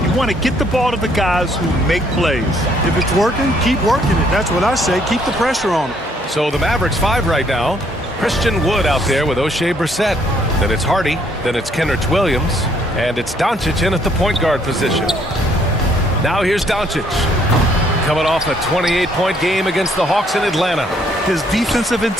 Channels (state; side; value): normal; both; correlation 0.67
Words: You want to get the ball to the guys who make plays. If it's working, keep working it. That's what I say. Keep the pressure on them. So the Mavericks 5 right now. Christian Wood out there with O'Shea Brissett. Then it's Hardy. Then it's Kenrich Williams. And it's Doncic in at the point guard position. Now here's Doncic. Coming off a 28-point game against the Hawks in Atlanta. His defensive